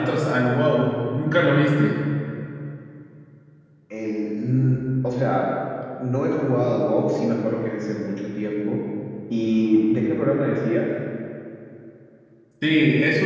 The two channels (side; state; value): both; identical; correlation 1.00